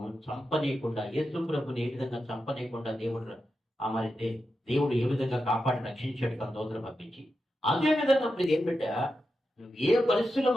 చంపనీయకుండా, యేసు ప్రభుని ఏ విధంగా చంపనీయకుండా దేవుడు ఏ విధంగా కాపాడి రక్షించాడు తన దూతను పంపించి, అదే విధంగా ఇప్పుడు ఏం పెట్టా నువ్వు ఏ పరిస్థితుల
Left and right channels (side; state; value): both; normal; correlation 0.89